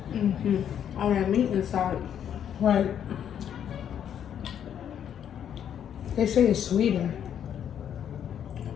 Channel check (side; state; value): right; quieter; 9.2 dB